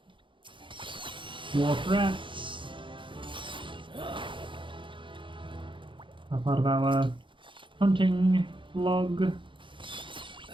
Dwarf rats. A part of our hunting log.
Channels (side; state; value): left; late; 0.24 ms